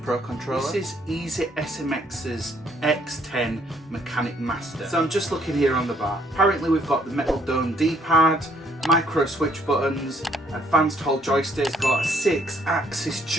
Pro controller. This is SMX's X10 Mechanic Master. So I'm just looking here on the bar. Apparently we've got the metal dome D-pad, micro switch buttons, advanced hold joysticks, got a 6-axis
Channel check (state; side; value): normal; both; correlation 0.66